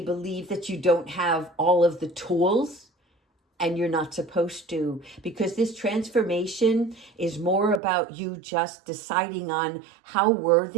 that you don't have all of the tools, and you're not supposed to, because this transformation is more about you just deciding on how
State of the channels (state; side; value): drops out; left; at 7.8 s